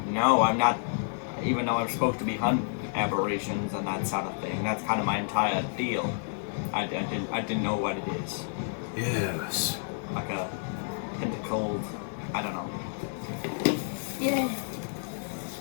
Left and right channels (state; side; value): silent; right; 58 dB below the other